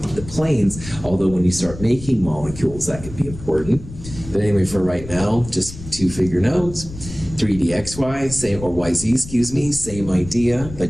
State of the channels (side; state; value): left; noise; rumble, 13 dB below the sound